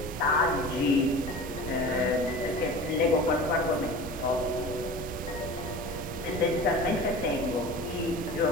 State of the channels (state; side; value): normal; both; correlation 0.36